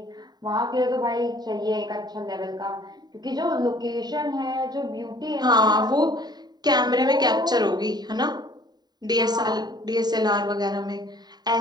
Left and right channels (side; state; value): left; late; 0.20 ms